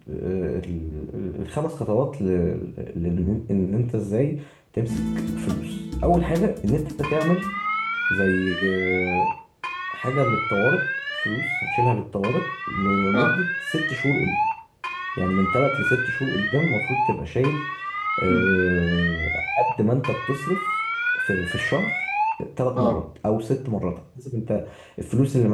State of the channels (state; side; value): identical; both; correlation 1.00